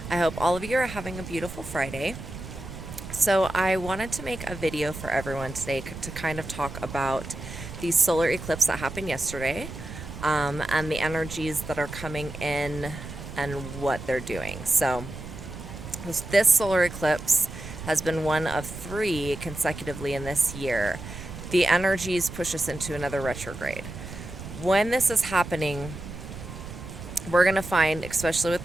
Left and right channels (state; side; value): noise; right; rumble, 11 dB below the sound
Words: I hope all of you are having a beautiful Friday. So I wanted to make a video for everyone today to kind of talk about the solar eclipse that happened yesterday, and the energies that are coming in and what they're doing. So this solar eclipse has been one of 3 consecutively in this year. The energies push us into another retrograde. When this is happening, we're going to find, especially with